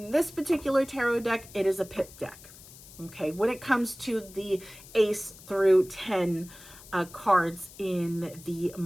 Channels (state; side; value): noise; left; hiss, 19 dB below the sound